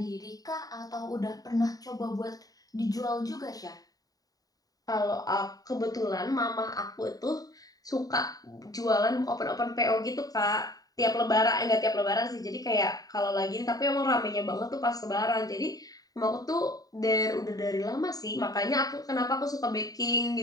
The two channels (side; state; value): right; late; 0.18 ms